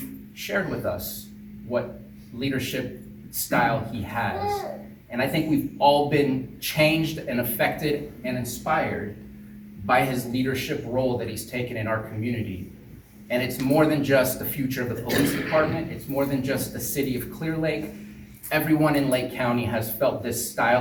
shared with us what leadership style he has. And I think we've all been changed and affected and inspired by his leadership role that he's taken in our community. And it's more than just the future of the police department. It's more than just the city of Clear Lake. Everyone in Lake County has felt this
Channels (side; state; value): both; identical; correlation 1.00